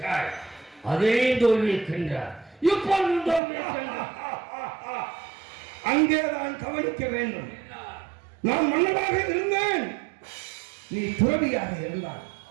அதே தோல்வியிருக்கின்றார். இப்பொழுது தோல்வியிருக்கின்றார். அங்கேதான் கவனிக்க வேண்டும். நான் மன்னனாக இருந்தேன், நீ துறவியாக இருந்தாய்.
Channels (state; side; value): drops out; left; at 3.4 s